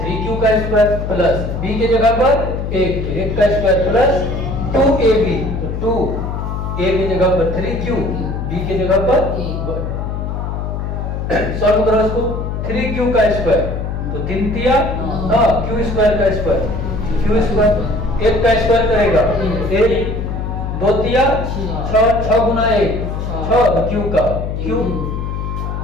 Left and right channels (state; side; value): noise; left; hum, 4 dB below the sound